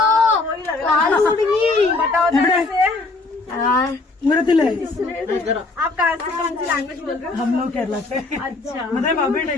കാല് കുടുങ്ങി. उमरतिले आप कहाँ से कौन सी लैंग्वेज बोल रहे हो? हम लोग केरला से. अच्छा मतलब अभी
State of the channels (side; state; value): right; quieter; 3.5 dB